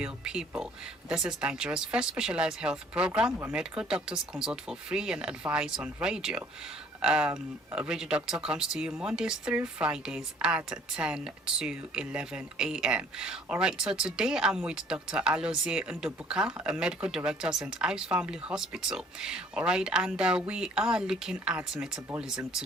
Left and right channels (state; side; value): normal; both; correlation 0.57